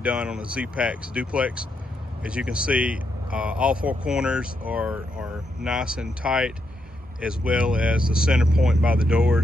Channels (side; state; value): both; normal; correlation 0.81